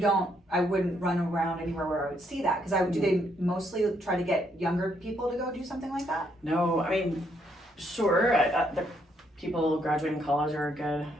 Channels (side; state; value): both; normal; correlation 0.73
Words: I wouldn't run around anywhere where I would see that. Because do they mostly try to get younger people to go do something like that? No, sure. The people graduating college are a good